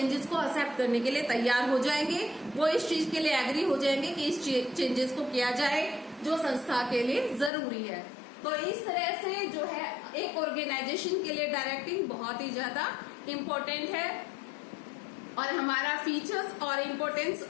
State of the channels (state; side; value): drops out; right; at 7.5 s